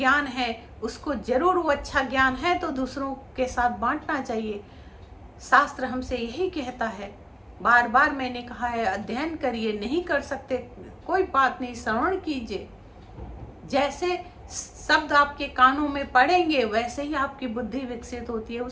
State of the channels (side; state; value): both; identical; correlation 1.00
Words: है उसको जरूर, वो अच्छा ज्ञान है तो दूसरों के साथ बांटना चाहिए। शास्त्र हमसे यही कहता है, बार बार मैंने कहा है, अध्ययन करिए, नहीं कर सकते कोई बात नहीं, श्रवण कीजिए। जैसे शब्द आपके कानों में पड़ेंगे वैसे ही आपकी बुद्धि विकसित होती है,